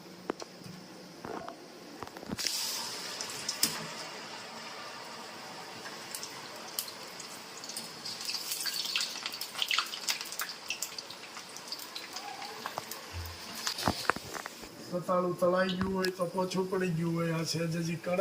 રતાળું તળાઈ ગયું હોય તો પોછું પડી ગયું હોય. આ છે હજી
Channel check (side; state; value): both; identical; correlation 1.00